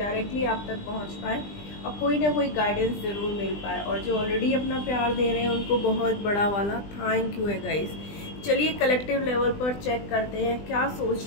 आप तक पहुँच पाए और कोई ना कोई गाइडेंस ज़रूर मिल पाए। और जो ऑलरेडी अपना प्यार दे रहे हैं उनको बहुत बड़ा वाला थैंक यू है गाइज। चलिए कलेक्टिव लेवल पर चेक करते हैं क्या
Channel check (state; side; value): late; right; 20 ms